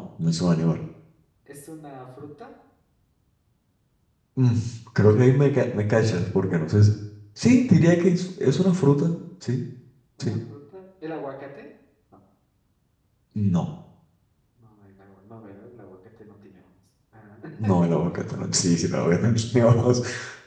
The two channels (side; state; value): both; identical; correlation 1.00